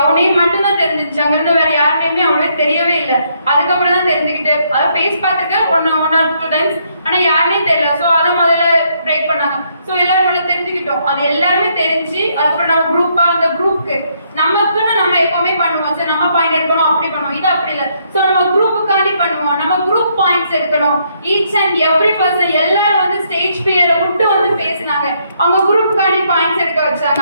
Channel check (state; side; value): inverted; both; correlation -0.72